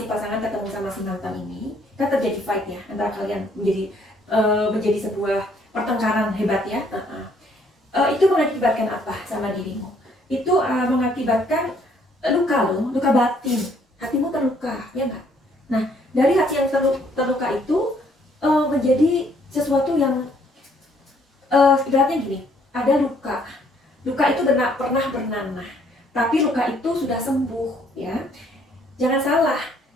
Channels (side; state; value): both; normal; correlation 0.65